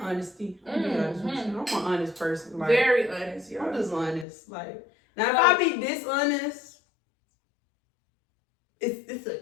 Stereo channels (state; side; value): drops out; right; at 4.2 s